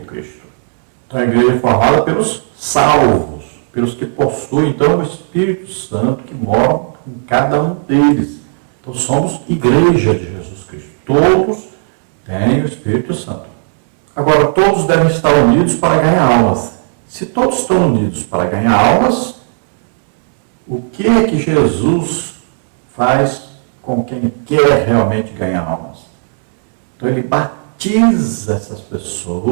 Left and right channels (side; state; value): left; silent; digital silence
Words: Cristo. Então, a igreja é formada pelos salvos, pelos que possuem, então, o Espírito Santo que mora em cada um deles. Então, somos igreja de Jesus Cristo. Todos têm o Espírito Santo. Agora, todos devem estar unidos para ganhar almas. Se todos estão unidos para ganhar almas, o que é que Jesus faz com quem quer realmente ganhar almas? Então, ele batiza essas